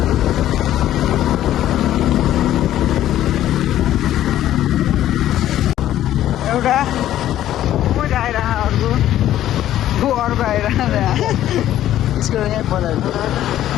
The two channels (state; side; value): quieter; right; 12.6 dB